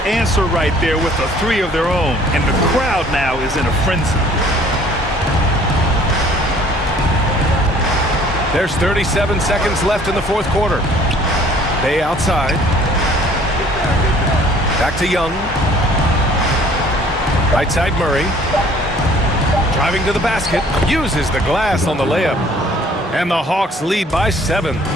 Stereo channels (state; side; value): normal; both; correlation 0.55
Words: answer right there with a 3 of their own. And the crowd now is in a frenzy. There's 37 seconds left in the fourth quarter. Bay outside. Back to Young. Right side Murray. Driving to the basket. Uses the glass on the layup. And the Hawks lead by 7.